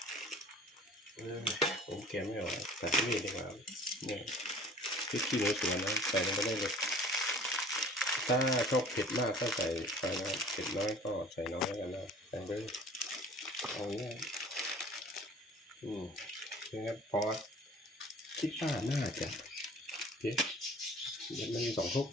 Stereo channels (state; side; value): normal; both; correlation 0.47